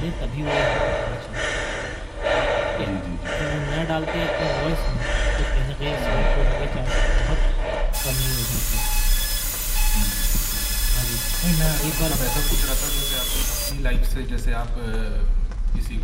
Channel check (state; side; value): identical; both; correlation 1.00